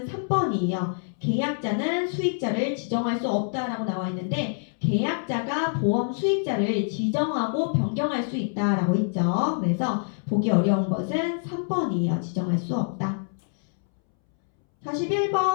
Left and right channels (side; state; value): right; silent; 61 dB below the other